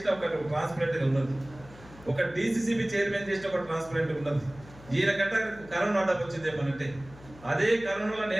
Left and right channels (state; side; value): noise; left; hum, 20 dB below the sound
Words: ఒక ట్రాన్స్పరెంట్గా ఉన్నది, ఒక డీసీసీబీ చైర్మన్ చేసిన ఒక ట్రాన్స్పరెంట్గా ఉన్నది. ఈయన గంట కరోనా ఆర్డర్ వచ్చింది ఏమనంటే అదే కరోనాలో